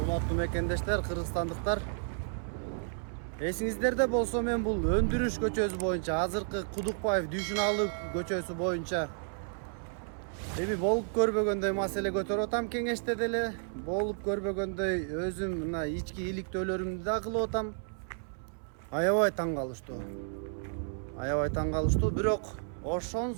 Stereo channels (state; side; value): silent; left; 56 dB below the other